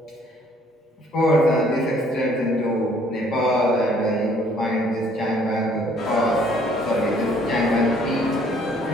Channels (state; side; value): normal; both; correlation 0.61